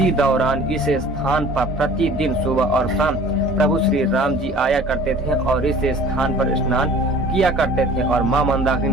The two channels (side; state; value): both; normal; correlation 0.47